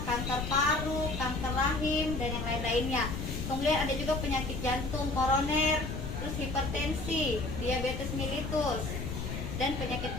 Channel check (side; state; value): left; noise; rumble, 4 dB below the sound